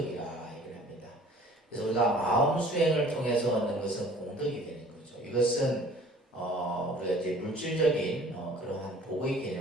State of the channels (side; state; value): both; normal; correlation 0.51